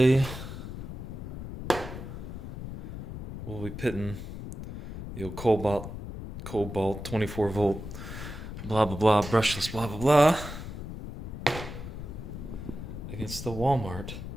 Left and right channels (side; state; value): left; noise; rumble, 9 dB below the sound